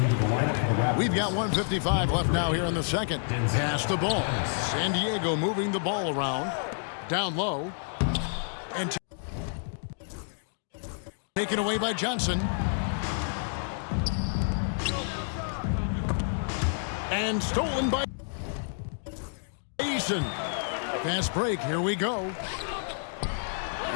the lineup for the Raptors. We've got 1:55 left now here in the second. Pass the ball. San Diego moving the ball around. Down low. And taken away by Johnson. And stolen by Eason. Fast break. Here we go.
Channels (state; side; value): silent; right; digital silence